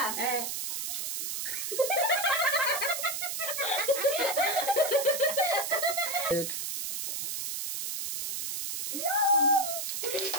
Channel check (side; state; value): right; noise; hiss, 3 dB below the sound